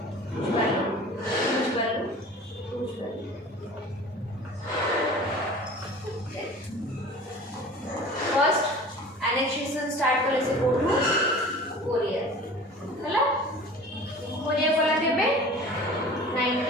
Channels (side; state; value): both; normal; correlation 0.41